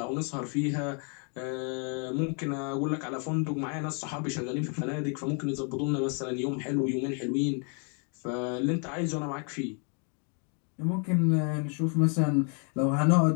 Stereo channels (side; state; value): right; quieter; 39.2 dB